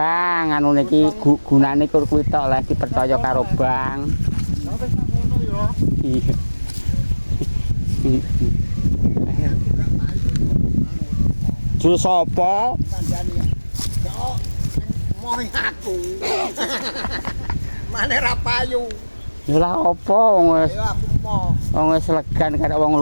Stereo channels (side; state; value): both; inverted; correlation -1.00